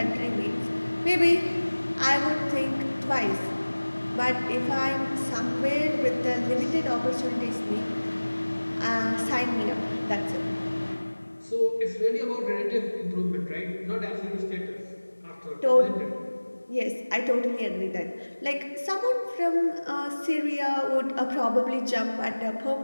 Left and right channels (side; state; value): both; inverted; correlation -1.00